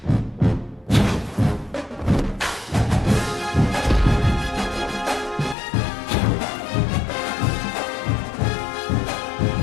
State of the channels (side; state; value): right; drops out; at 5.6 s